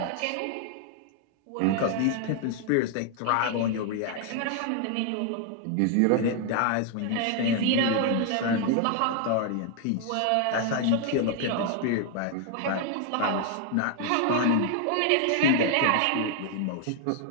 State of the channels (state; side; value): different; both; correlation 0.00